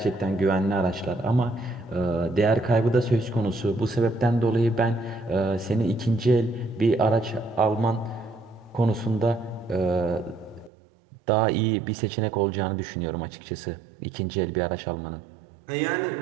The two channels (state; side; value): drops out; left; at 10.7 s